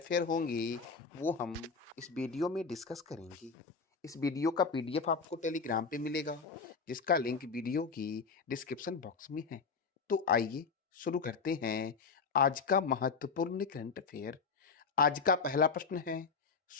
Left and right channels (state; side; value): quieter; right; 5.1 dB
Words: होंगे वो हम इस वीडियो में डिस्कस करेंगे। इस वीडियो का पीडीएफ आपको टेलीग्राम पे मिलेगा जिसका लिंक वीडियो की डिस्क्रिप्शन बॉक्स में है। तो आइए शुरू करते हैं आज का महत्वपूर्ण करंट अफेयर। आज का पहला प्रश्न है,